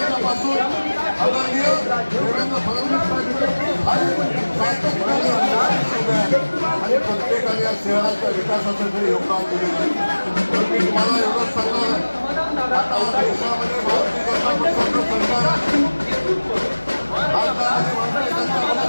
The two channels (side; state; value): both; inverted; correlation -1.00